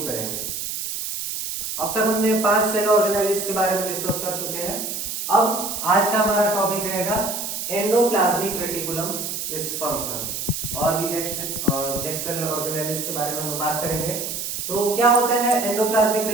करेंगे। अब तक हमने 5 सेल ऑर्गेनाइजेस के बारे में डिस्कस कर चुके हैं। अब आज का हमारा टॉपिक रहेगा एंडोप्लाज्मिक रेटिकुलम इस फंक्शन और भी नेक्स्ट सेल ऑर्गेनाइजेस के बारे में हम बात करेंगे। तो क्या होता है endoplasmic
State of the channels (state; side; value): noise; right; hiss, 4 dB below the sound